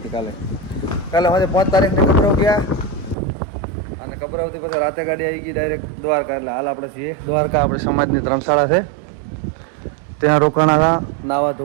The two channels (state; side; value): drops out; left; at 3.2 s